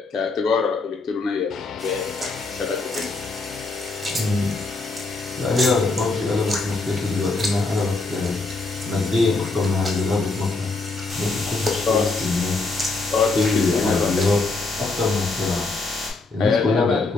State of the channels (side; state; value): right; quieter; 3.5 dB